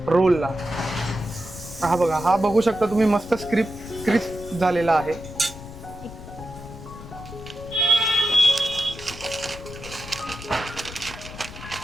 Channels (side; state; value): left; noise; rumble, 14 dB below the sound